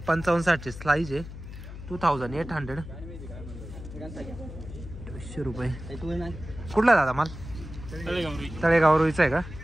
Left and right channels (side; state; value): left; noise; hum, 12 dB below the sound